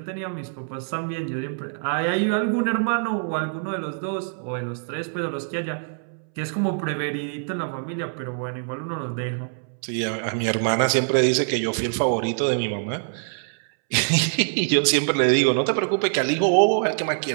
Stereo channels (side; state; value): left; silent; 62 dB below the other